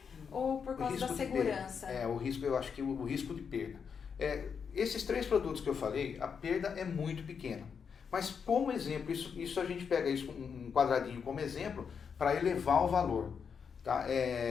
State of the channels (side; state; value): right; quieter; 6.5 dB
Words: ou por causa da segurança? O risco, eu acho que o risco de perda. Esses 3 produtos que eu falei, a perda é muito pequena. Mas como exemplo, isso a gente pega isso um quadradinho como exemplo para elevar o valor. Tá?